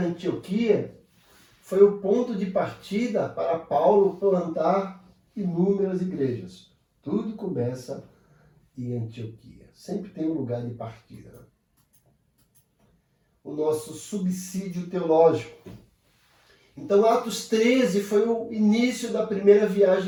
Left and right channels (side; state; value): both; identical; correlation 1.00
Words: foi o ponto de partida para Paulo plantar inúmeras igrejas. Tudo começa em Antioquia. Sempre tem um lugar de partida. Né? O nosso subsídio teológico. Então, Atos 13 foi o início da primeira